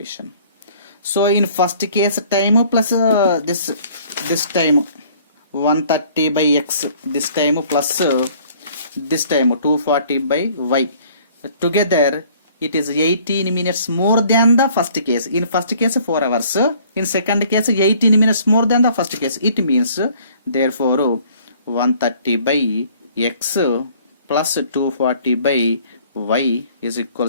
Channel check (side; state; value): both; inverted; correlation -0.56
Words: So in first case time plus this time 130 by x, this time plus this time 240 by y, together it is 18 minutes more than the first case. In first case 4 hours, in second case 18 minutes more than the first case. It means therefore 130 by x plus 240 by y is